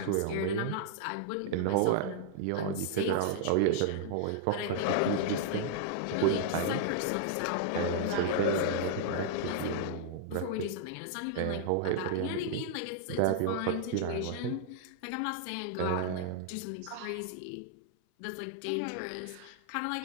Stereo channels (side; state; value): both; different; correlation -0.01